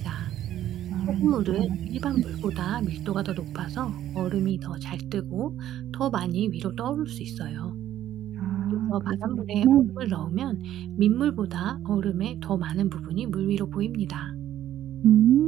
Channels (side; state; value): left; quieter; 12.1 dB